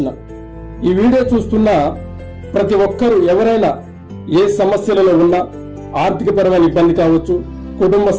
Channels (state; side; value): identical; both; correlation 1.00